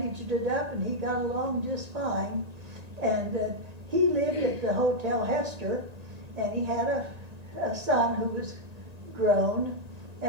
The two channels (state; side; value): late; left; 1.9 ms